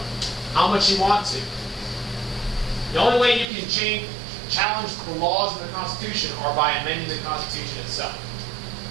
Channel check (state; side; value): drops out; left; at 3.5 s